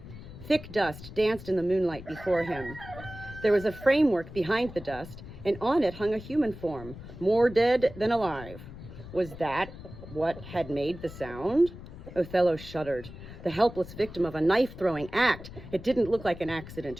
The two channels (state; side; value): noise; left; rumble, 14 dB below the sound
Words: Thick dust danced in the moonlight before him. There was a framework behind the dust, and on it hung a human form, more dead than alive. Was that what had made the sound? Othello shuddered. The helpless victim of a knife-throwing act. It didn't look like an accident.